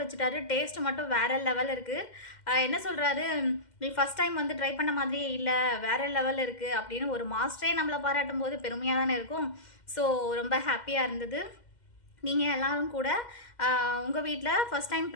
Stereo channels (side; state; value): right; late; 2.1 ms